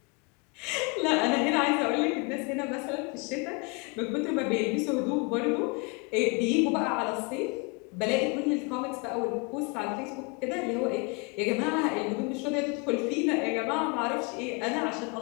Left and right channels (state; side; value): quieter; right; 30.6 dB